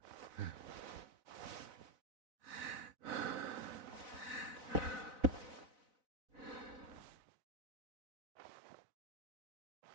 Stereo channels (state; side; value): late; left; 4.0 ms